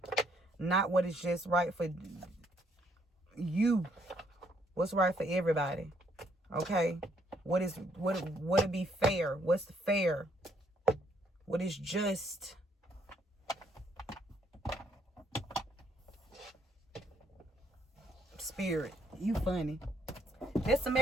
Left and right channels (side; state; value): both; normal; correlation 0.70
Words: Not what is just right for you. What's right for everybody. Okay? What would be fair? What's fair? What is just? Spirit, you funny. That's the